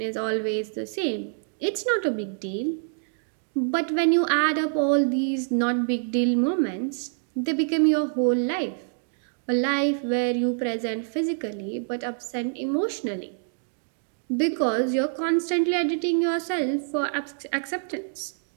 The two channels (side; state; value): left; silent; digital silence